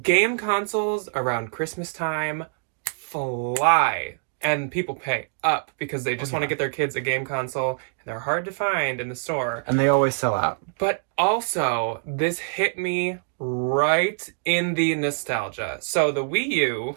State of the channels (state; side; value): silent; left; digital silence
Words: game consoles around Christmas time fly. And people pay up because they just want to get their kids a game console. And they're hard to find in the store. And they always sell out. But also, this hit me right in the nostalgia. So the Wii U,